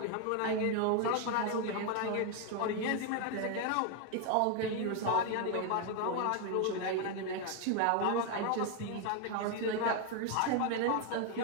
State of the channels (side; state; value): both; different; correlation 0.01